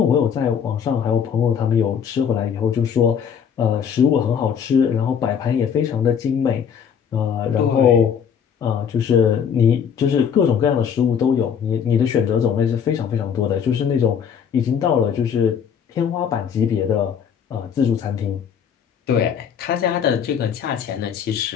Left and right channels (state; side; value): quieter; right; 7.6 dB